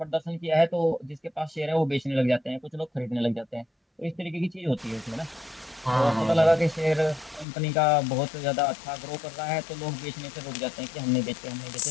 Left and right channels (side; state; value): right; drops out; at 7.5 s